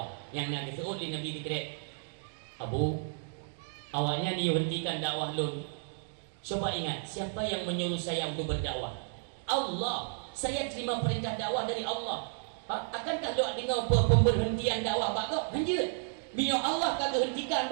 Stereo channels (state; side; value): silent; left; digital silence